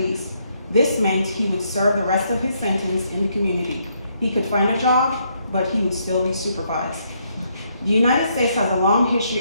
This meant he would serve the rest of his sentence in the community. He could find a job, but he would still be supervised. The United States has a long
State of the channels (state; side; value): inverted; both; correlation -0.74